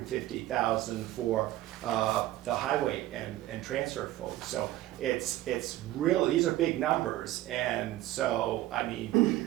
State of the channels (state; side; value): quieter; left; 15.4 dB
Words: for the highway and transfer folks. So it's really, these are big numbers. And so, I